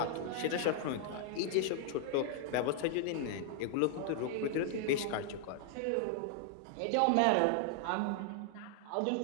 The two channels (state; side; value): different; both; correlation 0.00